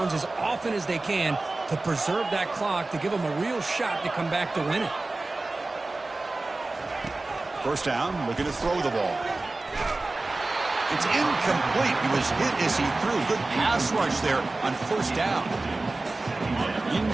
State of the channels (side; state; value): left; quieter; 3.1 dB